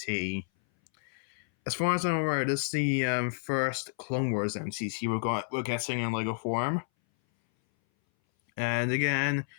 As far as I'm aware, this is the first Clone Wars MTT we're getting in Lego form. And again, a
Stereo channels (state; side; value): silent; right; 58 dB below the other